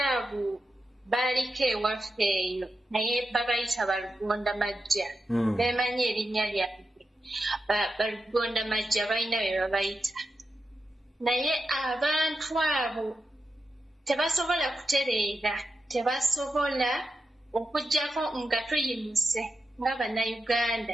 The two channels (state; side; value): normal; both; correlation 0.89